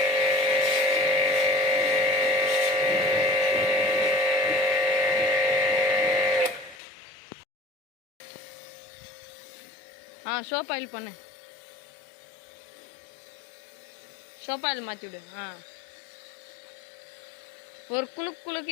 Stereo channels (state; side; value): drops out; right; at 6.8 s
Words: சோப் ஆயில் பண்ணு. சோப் ஆயில் மாற்றி விடு. ஒரு